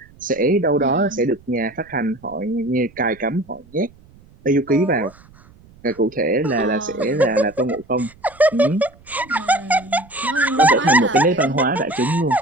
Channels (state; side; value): noise; right; rumble, 26 dB below the sound